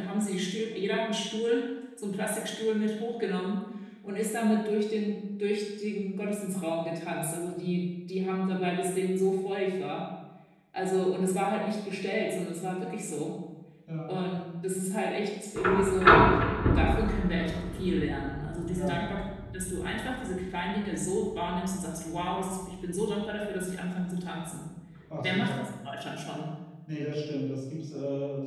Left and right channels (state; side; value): identical; both; correlation 1.00